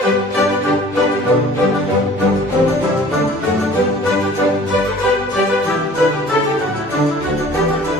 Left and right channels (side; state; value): both; normal; correlation 0.49